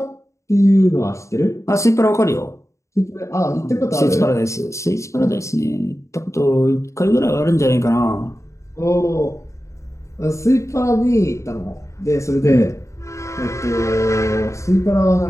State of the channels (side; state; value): right; late; 0.14 ms